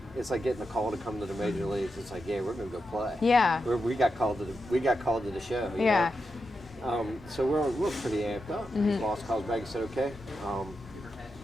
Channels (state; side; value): normal; both; correlation 0.87